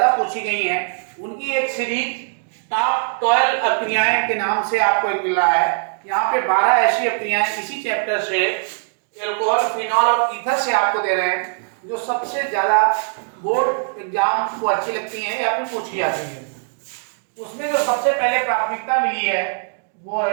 पूछी गई हैं उनकी एक सीरीज टॉप 12 अभिक्रियाएं के नाम से आपको एक मिल रहा है। यहाँ पे 12 ऐसी अभिक्रियाएं इसी चैप्टर से एल्कोहल, फिनॉल और ईथर से आपको दे रहे हैं जो सबसे ज्यादा बोर्ड एग्जाम को अच्छी लगती हैं या फिर पूछी जाती है। उसमें जो सबसे पहले प्राथमिकता मिली है वो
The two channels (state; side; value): silent; left; digital silence